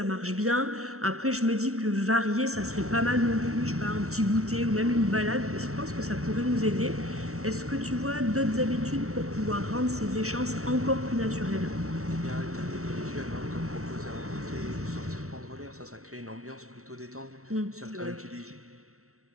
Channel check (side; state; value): left; late; 0.63 ms